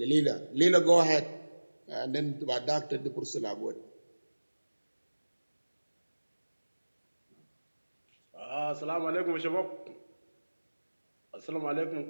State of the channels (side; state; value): both; inverted; correlation -1.00